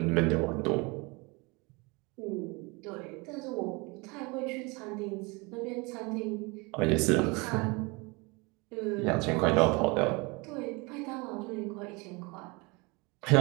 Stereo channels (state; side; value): quieter; left; 27.2 dB